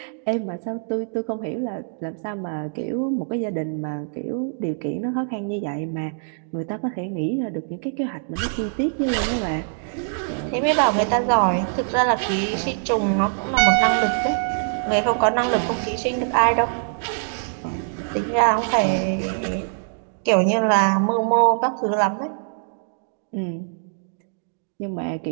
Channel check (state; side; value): silent; left; digital silence